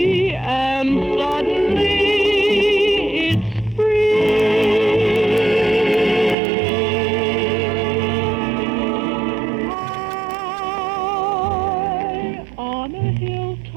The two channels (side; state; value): left; drops out; at 6.4 s